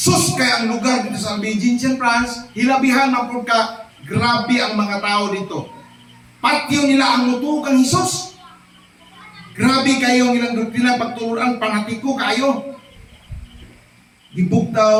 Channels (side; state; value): both; identical; correlation 1.00